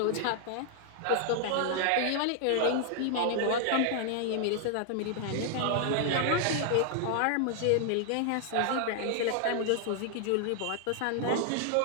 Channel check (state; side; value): different; both; correlation 0.00